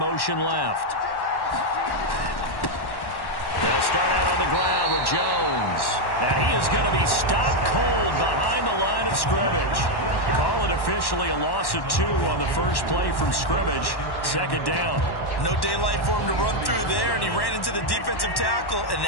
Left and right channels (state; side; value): late; right; 1.1 ms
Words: left. They'll start out on the ground with Jones. And he is going to be stopped cold behind the line of scrimmage. Call it officially a loss of 2 on the first play from scrimmage. Second down. No daylight for him to run through there, and he ran into the defensive tackle, and